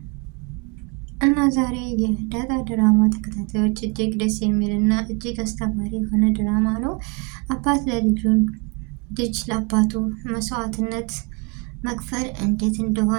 እና ዛሬ የዳጣ ድራማ ተከታታዮች እጅግ ደስ የሚል እና እጅግ አስተማሪ የሆነ ድራማ ነው። አባት ለልጁን ልጅ ለአባቱ መስዋዕትነት መክፈል እንዴት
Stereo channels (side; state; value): left; quieter; 30.4 dB